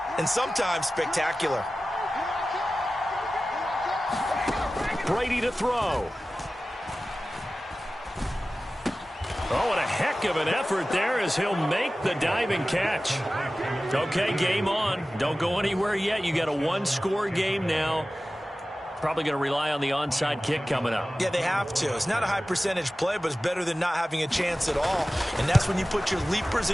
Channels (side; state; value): both; normal; correlation 0.96